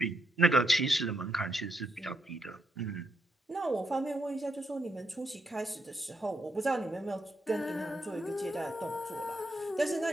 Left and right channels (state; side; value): normal; both; correlation 0.80